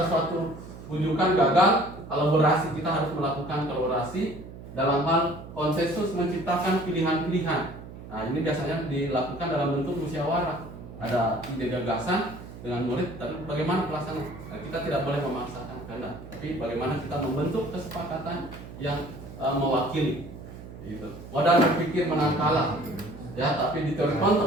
suatu rujukan gagal, kolaborasi kita harus melakukan kolaborasi dalam hal konsensus menciptakan pilihan-pilihan. Nah, ini biasanya dilakukan dalam bentuk musyawarah. Ada ide gagasan dengan murid, tapi bagaimana pelaksanaan? Nah, kita tidak boleh memaksakan kehendak, tapi bagaimana kita membentuk kesepakatan yang mewakili. Gitu. Modal berpikir menang kalah, ya, tapi di teori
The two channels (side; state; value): right; noise; hum, 14 dB below the sound